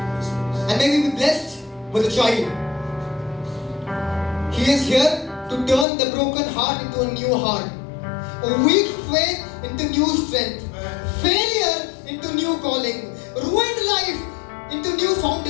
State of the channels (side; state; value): right; drops out; at 5.9 s